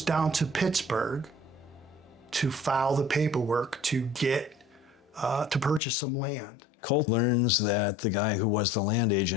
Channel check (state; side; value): drops out; right; at 5.8 s